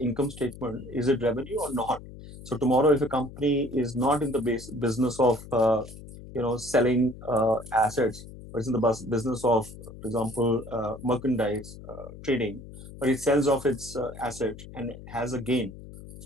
statement, is it revenue or not? So tomorrow, if a company is not in the business of selling assets, but it's in the business of, for example, merchandise trading, but it sells off its asset and has a gain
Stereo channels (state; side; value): noise; left; hum, 15 dB below the sound